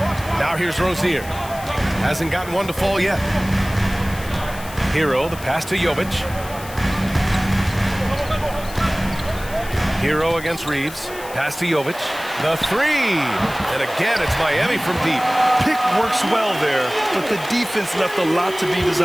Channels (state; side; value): noise; left; hiss, 16 dB below the sound